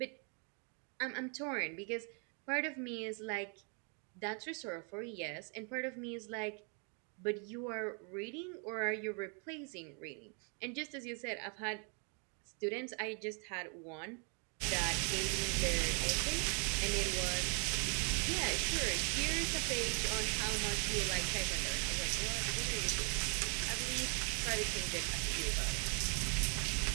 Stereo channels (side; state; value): left; quieter; 38.6 dB